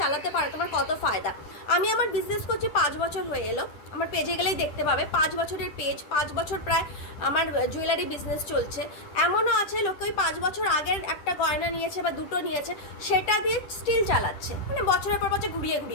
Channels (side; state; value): right; late; 10 ms